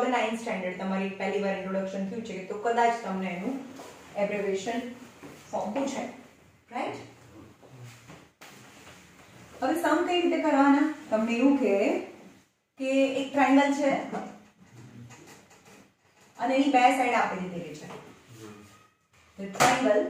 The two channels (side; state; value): both; identical; correlation 1.00